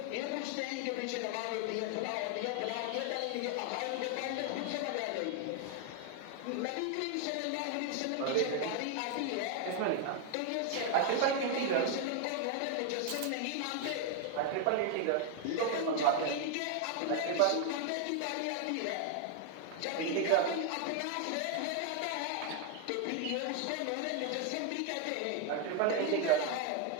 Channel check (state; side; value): different; both; correlation 0.01